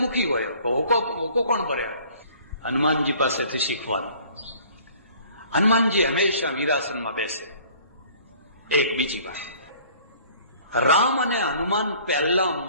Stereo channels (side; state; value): both; inverted; correlation -0.53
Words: મુખી હોય, હોકો કોણ ભરે? હનુમાનજી પાસેથી શીખવાનું. હનુમાનજી હંમેશા વીરાસનમાં બેસે. એક બીજી વાત, રામ અને હનુમાન પહેલા